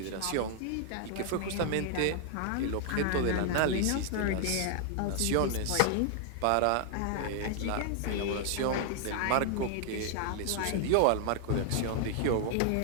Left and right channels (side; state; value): both; different; correlation 0.00